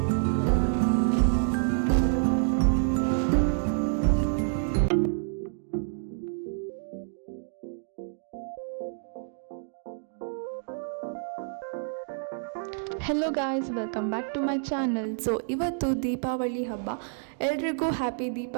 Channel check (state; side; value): silent; left; digital silence